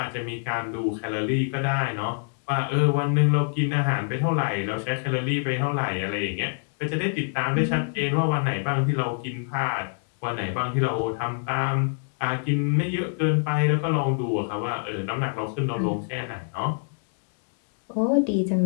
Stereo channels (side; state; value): right; silent; 61 dB below the other